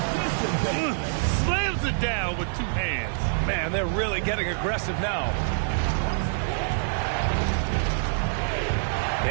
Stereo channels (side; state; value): left; silent; digital silence